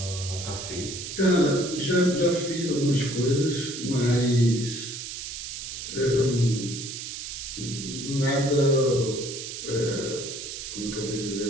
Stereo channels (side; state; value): right; noise; hiss, 8 dB below the sound